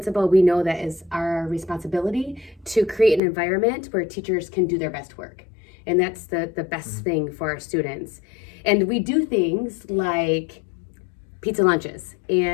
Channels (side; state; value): right; drops out; at 3.2 s